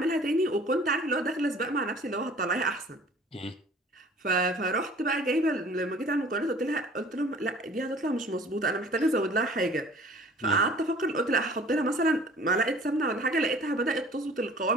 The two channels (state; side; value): normal; both; correlation 0.49